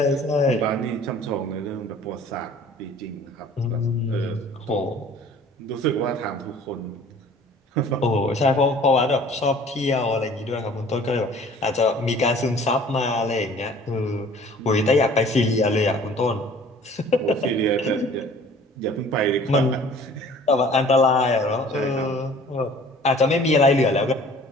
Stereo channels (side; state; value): both; normal; correlation 0.50